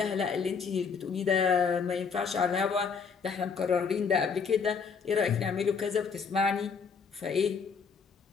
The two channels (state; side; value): quieter; right; 5.8 dB